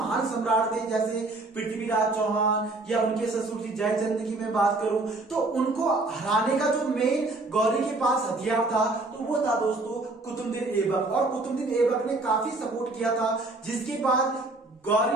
सम्राट थे जैसे पृथ्वीराज चौहान या उनके ससुर जी जयचंद की मैं बात करूं तो उनको हराने का जो मेन गौरी के पास हथियार था तो वो था दोस्तों कुतुबुद्दीन ऐबक। और कुतुबुद्दीन ऐबक ने काफी सपोर्ट किया था, जिसके बाद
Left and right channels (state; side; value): quieter; left; 3.1 dB